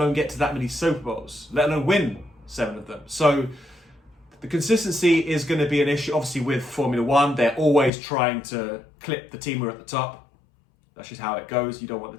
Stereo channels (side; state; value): right; drops out; at 7.9 s